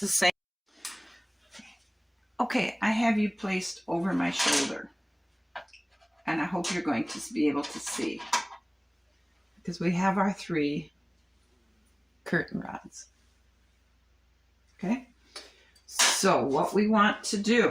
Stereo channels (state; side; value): identical; both; correlation 1.00